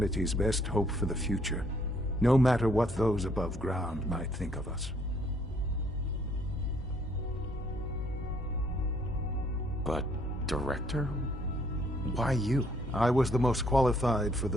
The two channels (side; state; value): both; normal; correlation 0.66